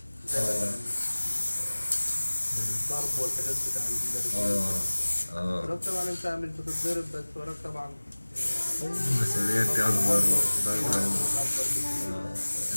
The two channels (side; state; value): both; inverted; correlation -1.00